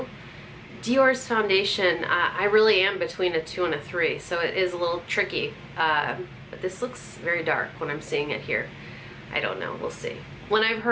Dior's foundation, I really am between a 2 and a 3, so it is a little tricky. But this looks very dark when I'm seeing it here. I don't know, we'll see. When I've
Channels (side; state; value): both; identical; correlation 1.00